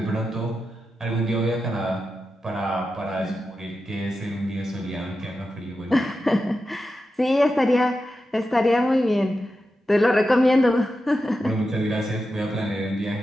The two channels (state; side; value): normal; both; correlation 0.90